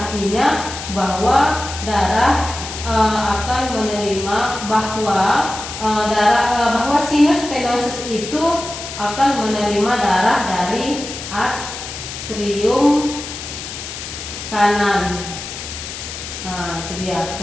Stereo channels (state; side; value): noise; left; hiss, 9 dB below the sound